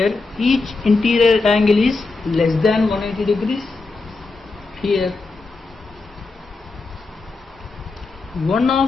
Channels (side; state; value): right; quieter; 3.8 dB